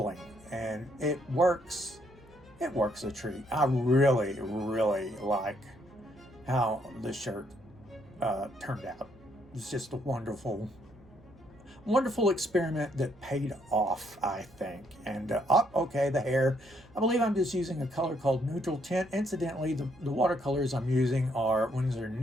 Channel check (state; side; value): noise; right; hum, 26 dB below the sound